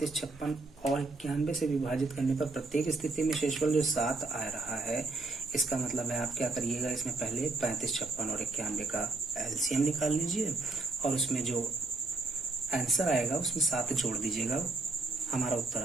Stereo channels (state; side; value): quieter; left; 3.4 dB